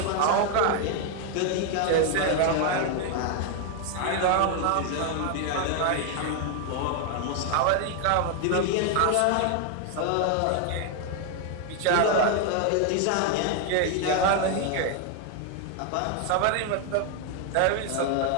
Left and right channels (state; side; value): different; both; correlation 0.00